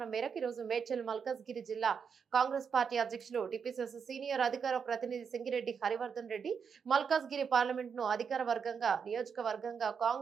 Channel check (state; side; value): quieter; left; 6.5 dB